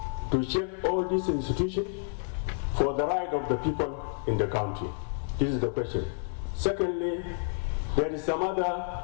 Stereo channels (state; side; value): silent; right; digital silence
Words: to check all these institutions for the right of the people in the country. This is the question. Secondly, there is some